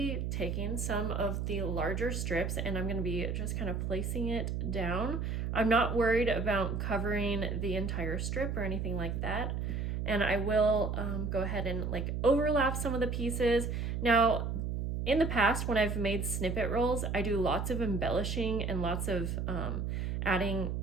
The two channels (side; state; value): right; noise; hum, 2 dB below the sound